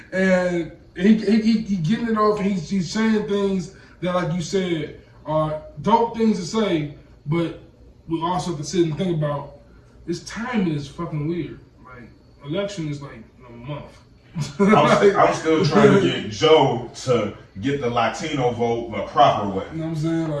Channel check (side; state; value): both; identical; correlation 1.00